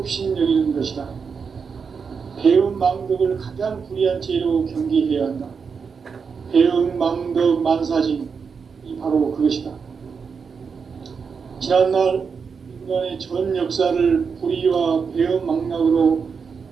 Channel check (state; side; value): quieter; left; 5.8 dB